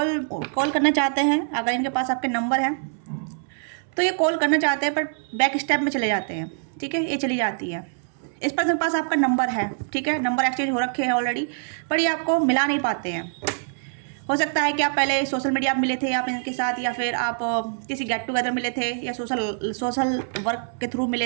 करना चाहते हैं। अगर इनके पास आपके नंबर हैं तो ये कॉल करना चाहते हैं, पर बैक स्टेप में चले जाते हैं। ठीक है, ये चली जाती है। इस पर्सन के पास आपका नंबर है, ठीक है, नंबर एक्सचेंज हो रखे हैं ऑलरेडी, पर ये आपको मिला नहीं पाते हैं। हो सकता है कि आप पहले सोशल मीडिया पर मिले थे आप इनके साथ, या फिर आप किसी गेट टुगेदर मिले थे, या सोशल वर्क के थ्रू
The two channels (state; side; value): silent; left; 62 dB below the other